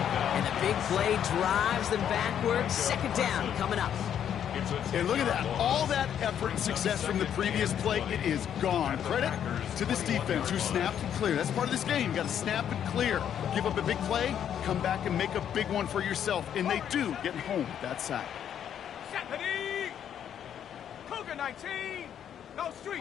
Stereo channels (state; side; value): quieter; right; 9.3 dB